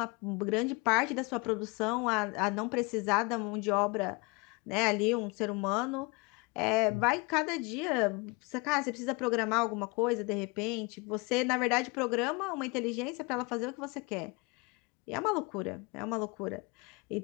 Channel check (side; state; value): right; quieter; 28.0 dB